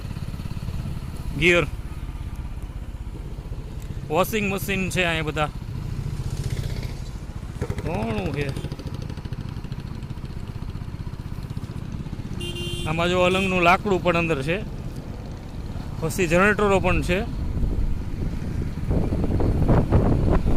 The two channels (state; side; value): identical; both; correlation 1.00